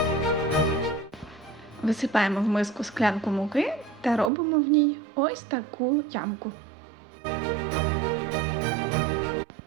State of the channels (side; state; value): left; drops out; at 4.3 s